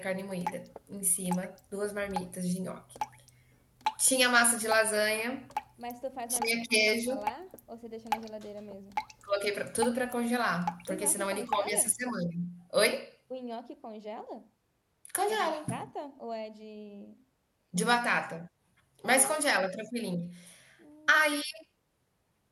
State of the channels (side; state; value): both; identical; correlation 1.00